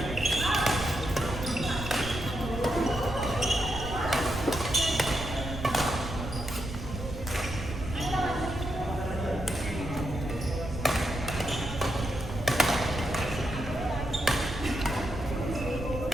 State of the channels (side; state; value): right; noise; rumble, 7 dB below the sound